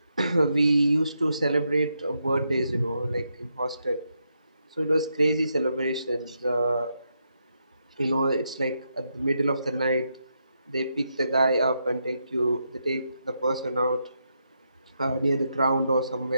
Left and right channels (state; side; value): inverted; both; correlation -0.82